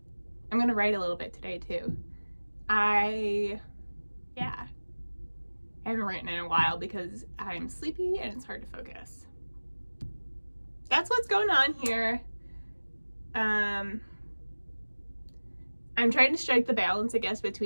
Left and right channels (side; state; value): both; inverted; correlation -1.00